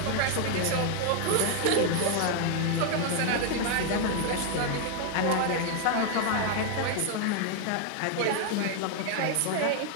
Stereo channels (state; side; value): different; both; correlation 0.00